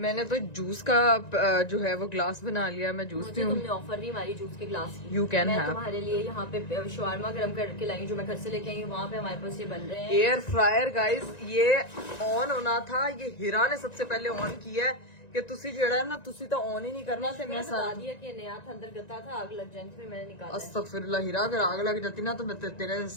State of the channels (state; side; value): late; right; 1.9 ms